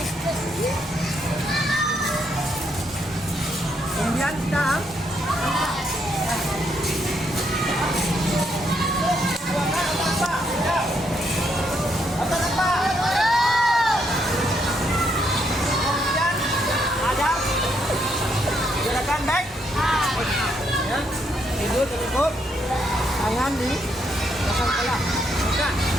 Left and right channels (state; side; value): normal; both; correlation 0.75